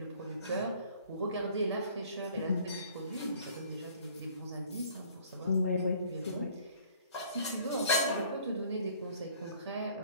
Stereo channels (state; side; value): inverted; both; correlation -0.55